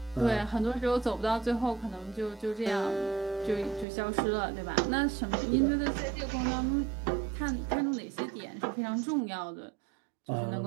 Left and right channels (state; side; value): drops out; left; at 3.9 s